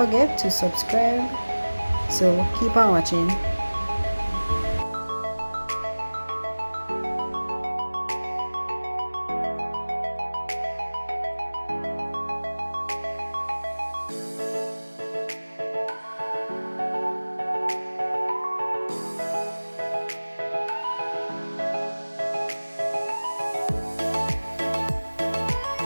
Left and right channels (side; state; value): both; inverted; correlation -1.00